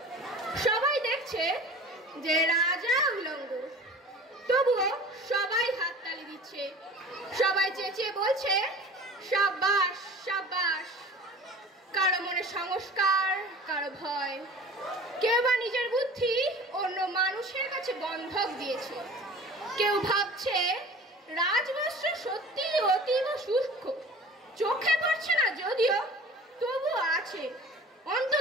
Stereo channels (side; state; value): both; normal; correlation 0.41